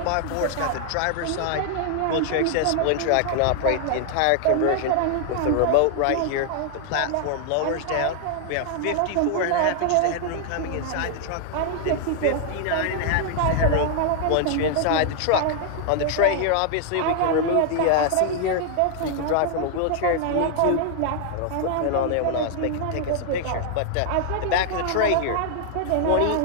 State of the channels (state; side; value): different; both; correlation 0.00